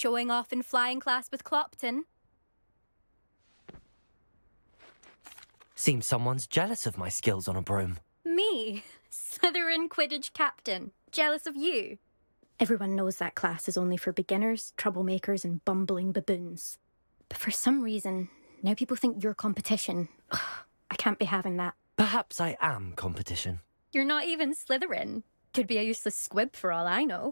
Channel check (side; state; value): both; inverted; correlation -1.00